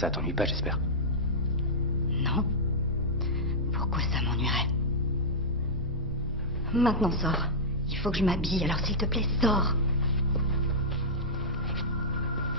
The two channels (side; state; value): both; normal; correlation -0.10